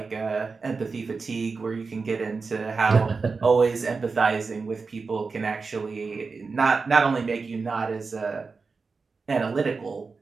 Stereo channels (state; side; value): quieter; left; 4.5 dB